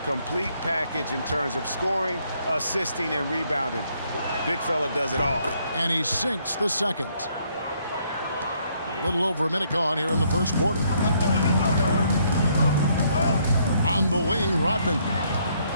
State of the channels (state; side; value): inverted; both; correlation -0.69